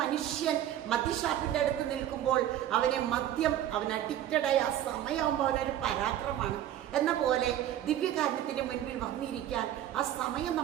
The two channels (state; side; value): quieter; left; 11.9 dB